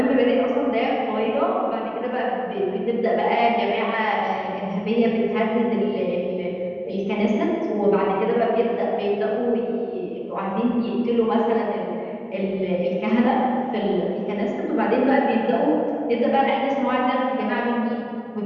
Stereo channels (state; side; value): identical; both; correlation 1.00